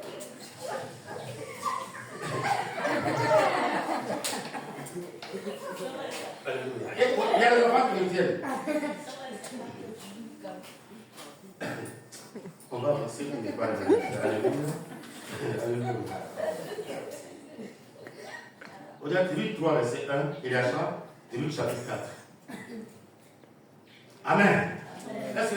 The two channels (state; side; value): identical; both; correlation 1.00